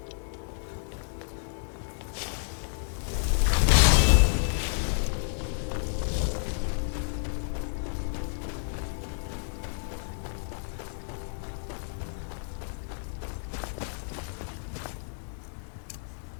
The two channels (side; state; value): right; silent; digital silence